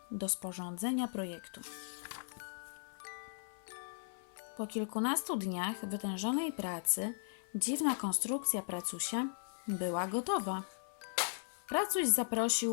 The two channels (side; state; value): right; silent; 53 dB below the other